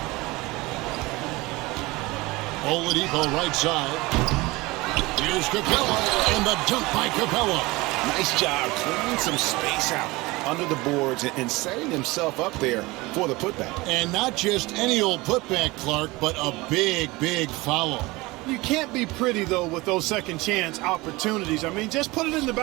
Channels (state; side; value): quieter; left; 22.0 dB